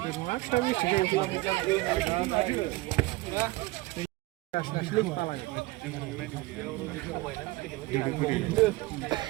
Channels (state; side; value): quieter; left; 20.0 dB